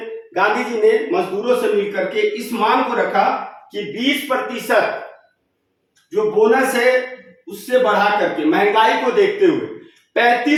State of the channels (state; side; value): identical; both; correlation 1.00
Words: जी ने मजदूरों से मिलकर के इस मांग को रखा कि 20% जो बोनस है उससे बढ़ा करके महंगाई को देखते हुए